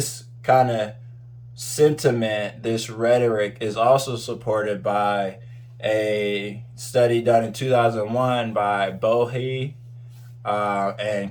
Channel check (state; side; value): identical; both; correlation 1.00